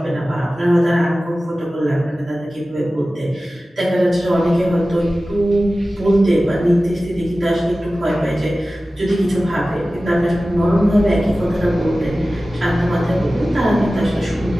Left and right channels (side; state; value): both; normal; correlation 0.96